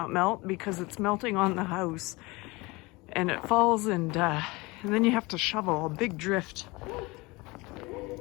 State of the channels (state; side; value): quieter; right; 23.9 dB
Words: melt because it's melting on the house, and it falls, and then you have to shovel a big drift.